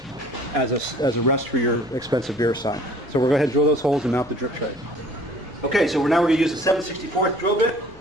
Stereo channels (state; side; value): noise; left; hum, 24 dB below the sound